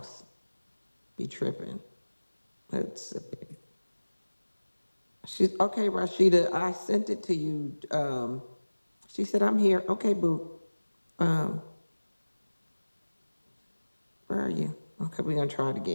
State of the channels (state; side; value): inverted; both; correlation -1.00